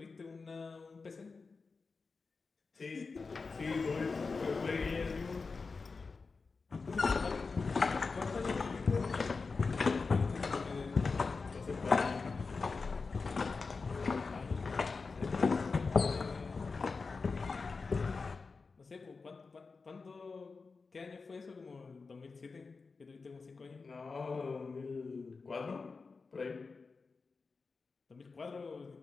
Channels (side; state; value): right; quieter; 4.4 dB